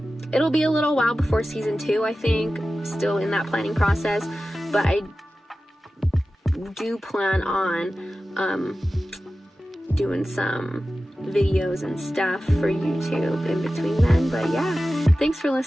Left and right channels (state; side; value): normal; both; correlation 0.95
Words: it'll be a little while before season 2, I think. Still in that planning process, but I do plan on doing some videos and stuff for YouTube in between then. But yeah, thanks for